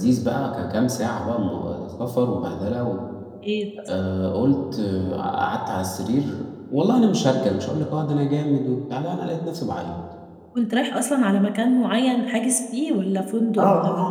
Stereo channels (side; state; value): both; identical; correlation 1.00